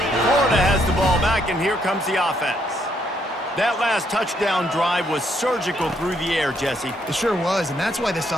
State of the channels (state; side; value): normal; both; correlation 0.73